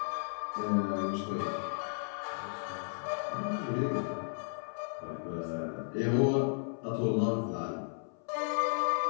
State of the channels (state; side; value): silent; right; 55 dB below the other